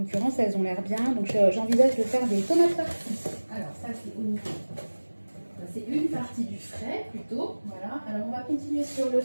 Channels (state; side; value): inverted; both; correlation -1.00